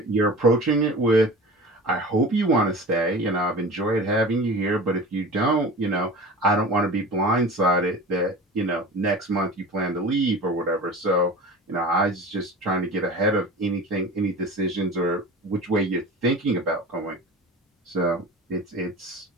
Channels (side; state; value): both; normal; correlation 0.36